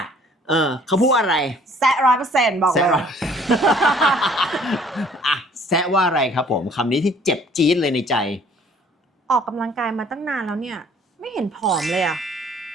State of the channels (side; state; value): both; normal; correlation 0.57